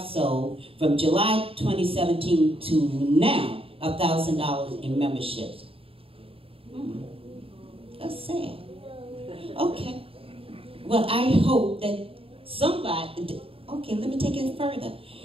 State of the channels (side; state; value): left; late; 0.27 ms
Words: sold from July 2017 to now $1,000 in memberships? That's sad. Okay. Well, I hope that somebody, okay, let me take it further.